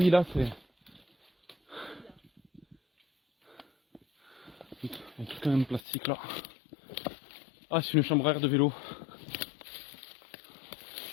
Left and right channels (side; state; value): right; drops out; at 5.8 s